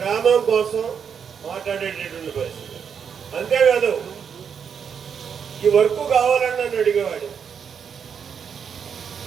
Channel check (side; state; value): left; quieter; 7.2 dB